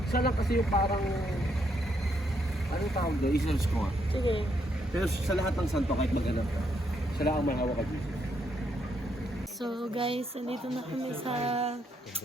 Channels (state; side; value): normal; both; correlation 0.75